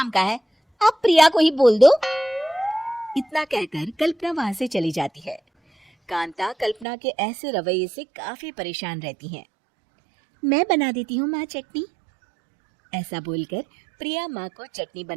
का है, आप प्रिया को ही बोल दो। इतना कहकर कल्पना वहां से चली जाती है। कांता कल्पना के ऐसे रवैये से काफी परेशान रहती हैं। मैं बना देती हूँ माँ चटनी, ऐसा बोलकर प्रिया माँ को चटनी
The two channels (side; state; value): left; drops out; at 6.9 s